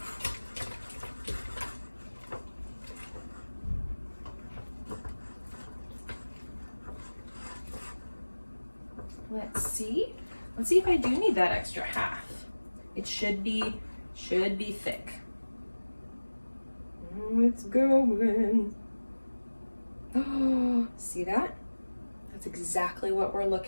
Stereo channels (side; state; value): both; inverted; correlation -1.00